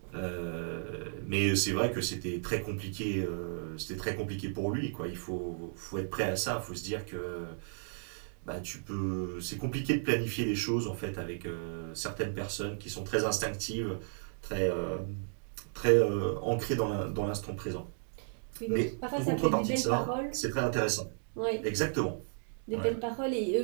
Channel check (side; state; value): left; silent; digital silence